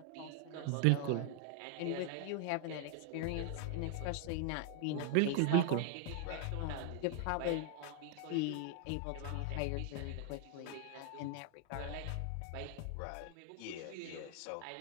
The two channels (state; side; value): different; both; correlation 0.00